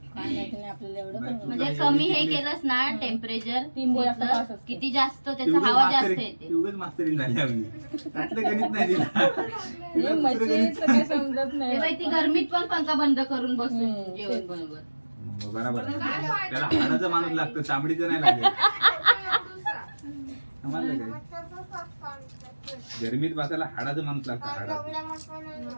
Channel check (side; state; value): both; inverted; correlation -1.00